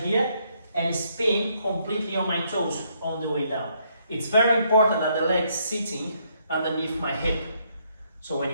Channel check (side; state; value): both; inverted; correlation -0.72